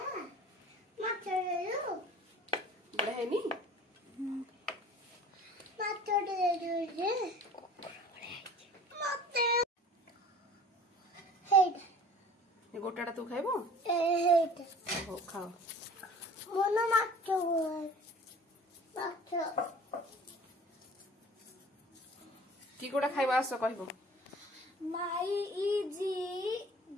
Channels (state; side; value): normal; both; correlation 0.46